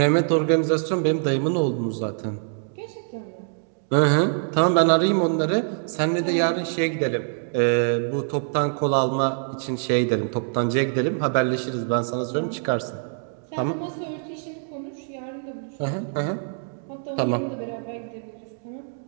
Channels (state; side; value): silent; left; digital silence